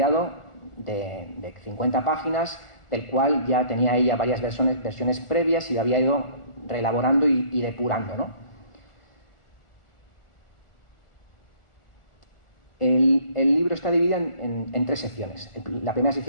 de 50 páginas, del cual ya tenía ella varias versiones previas y lo había ido reelaborando y depurando, ¿no? El libro está dividido en tres secciones. La primera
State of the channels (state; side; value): late; right; 1.4 ms